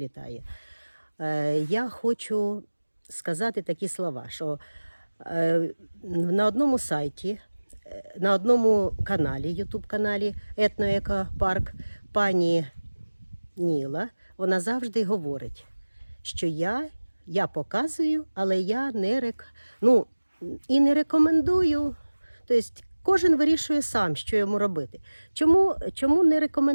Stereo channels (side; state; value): both; inverted; correlation -1.00